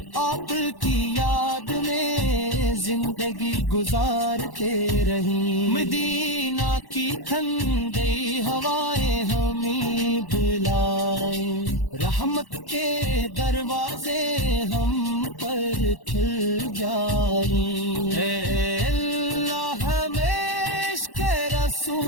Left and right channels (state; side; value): late; right; 1.1 ms